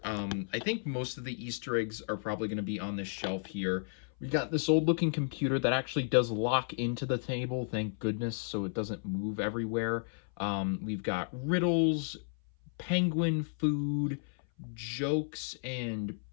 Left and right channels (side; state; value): right; silent; 56 dB below the other